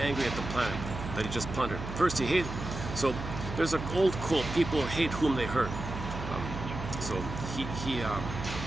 at the planet that he just plundered. First he hated, so there's an old quote, people hate whom they hurt. So he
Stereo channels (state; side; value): noise; right; hum, 7 dB below the sound